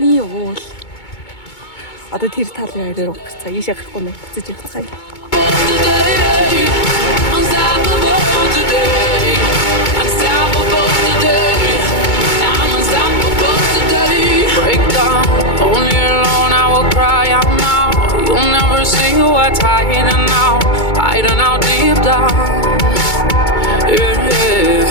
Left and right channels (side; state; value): right; late; 2.2 ms